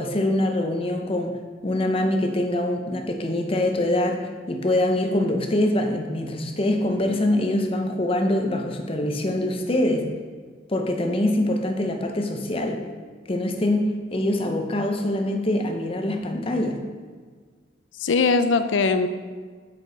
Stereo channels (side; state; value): both; normal; correlation 0.60